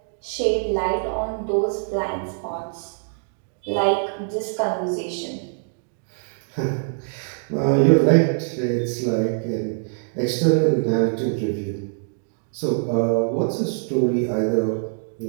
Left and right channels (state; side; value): silent; left; digital silence